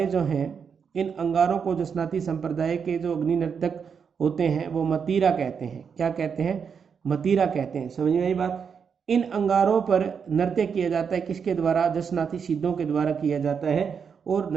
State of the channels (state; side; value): quieter; left; 6.6 dB